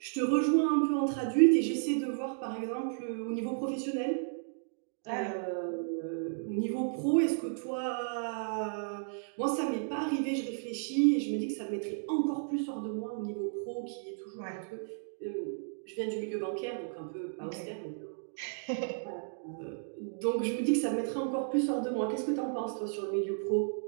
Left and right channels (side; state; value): left; silent; digital silence